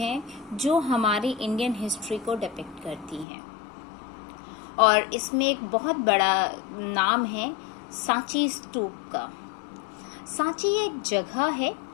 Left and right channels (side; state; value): right; drops out; at 3.2 s